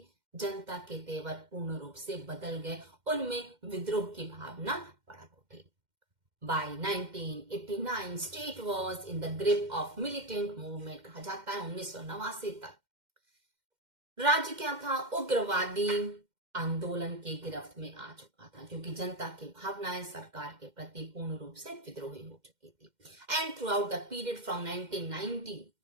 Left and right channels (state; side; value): late; left; 2.1 ms